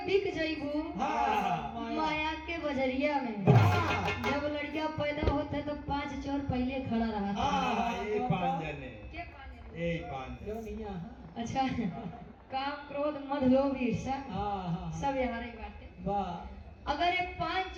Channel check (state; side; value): identical; both; correlation 1.00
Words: बिक जइबू माया के बजरिया में। जब लड़कियां पैदा होते तो 5 चोर पहले खड़ा रहा था। अच्छा काम क्रोध मद लोभ ईर्ष्या सब यहाँ रही बातें। अगर ये 5